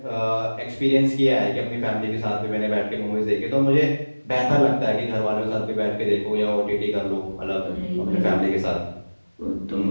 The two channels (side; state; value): both; inverted; correlation -1.00